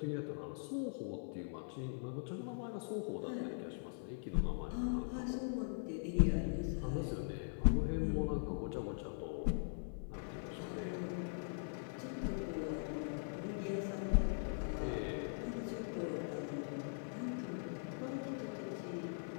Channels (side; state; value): right; silent; 50 dB below the other